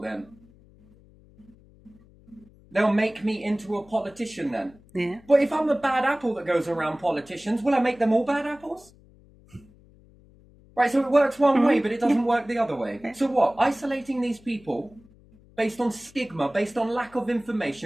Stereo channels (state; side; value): noise; left; hum, 27 dB below the sound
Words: then. They'll make me into a politician then. Yeah. But if I'm a bad apple that goes around politicians, will I make them all bad apples? Right, so it works one way, but it doesn't work the other way. So what? Isolating these people based on stigma, based on lack of